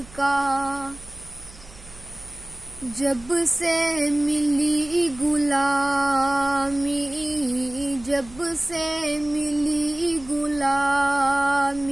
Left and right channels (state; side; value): noise; right; hum, 21 dB below the sound